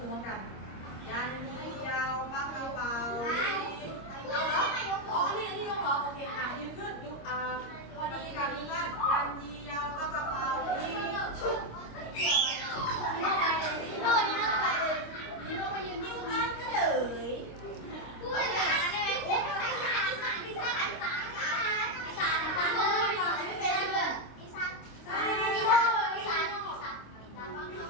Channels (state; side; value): late; right; 26 ms